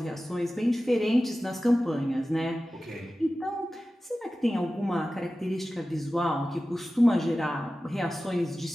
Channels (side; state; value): both; normal; correlation 0.95